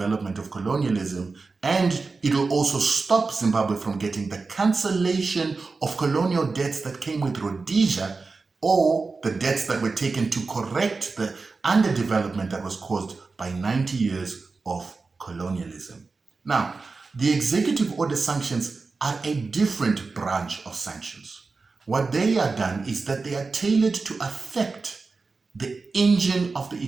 of colonialism. And it will also stop Zimbabwe from getting the cancellation of colonial debts that came with Rhodesia, or the debts that were taken to correct the underdevelopment that was caused by 90 years of colonialism. Now, the executive order sanctions are a different branch of sanctions. What they are done is that they are tailored to affect the engine of the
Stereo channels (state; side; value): quieter; left; 4.1 dB